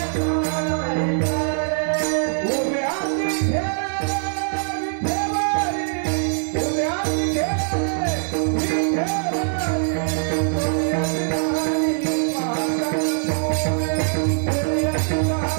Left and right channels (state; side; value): silent; left; digital silence